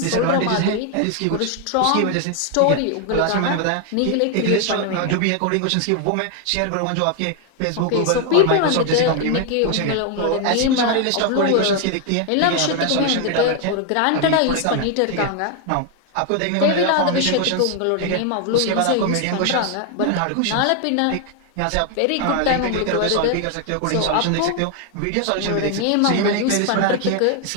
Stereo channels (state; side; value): different; both; correlation 0.01